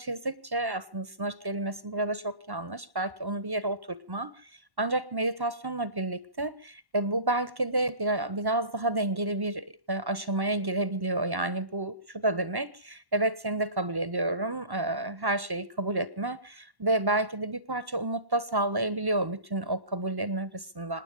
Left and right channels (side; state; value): left; late; 1.1 ms